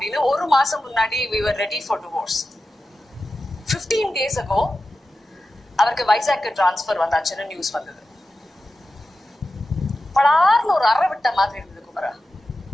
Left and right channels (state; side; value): normal; both; correlation 0.93